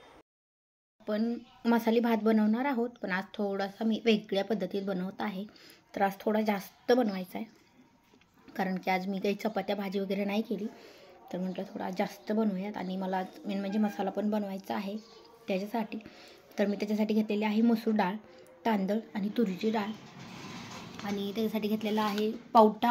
पण मसाली भात बनवणार आहोत, पण आज थोडासा मी वेगळ्या पद्धतीत बनवत आहे. तर आज थोडा जास्त बनवायचा आहे, कारण की आज मी काही चपात्या भाजी वगैरे नाही केली. तर म्हटलं थोडा जास्त बनवूयात. आणि मला मेन म्हणजे मसाला पण बनवायचा आहे त्याच्यासाठी. तर मी त्याच्यासाठी घेतलेली आहे मसूर डाळ, तांदूळ आणि तुरीची डाळ. आणि त्याच्यासाठी घेतलेला आहे पावटा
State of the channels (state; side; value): identical; both; correlation 1.00